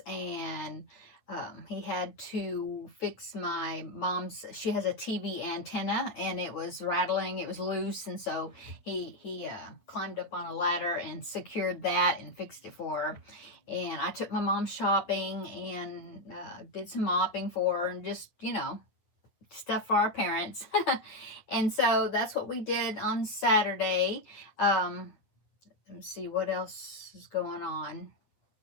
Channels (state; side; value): late; right; 9.2 ms